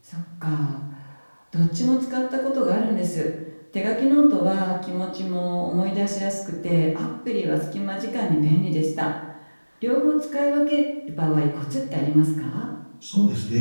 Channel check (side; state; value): both; inverted; correlation -1.00